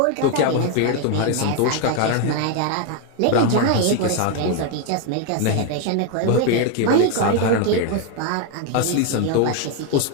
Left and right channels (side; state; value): both; different; correlation 0.01